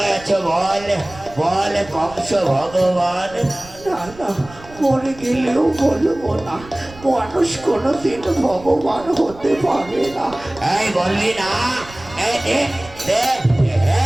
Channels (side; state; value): right; noise; rumble, 19 dB below the sound